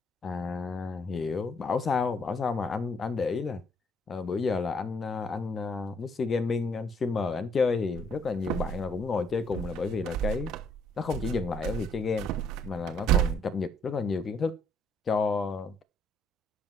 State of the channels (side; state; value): both; normal; correlation 0.66